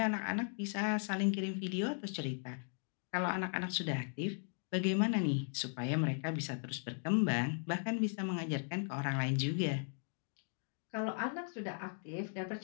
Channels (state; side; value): silent; right; 53 dB below the other